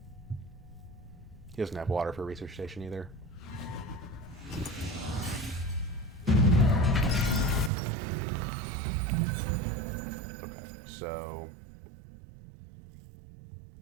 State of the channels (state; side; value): drops out; left; at 7.7 s